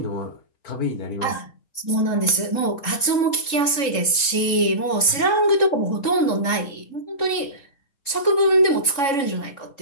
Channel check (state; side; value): late; right; 3.7 ms